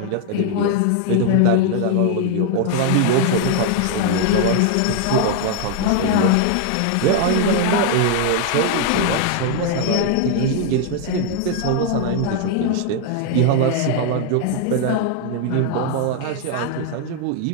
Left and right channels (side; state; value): both; different; correlation 0.00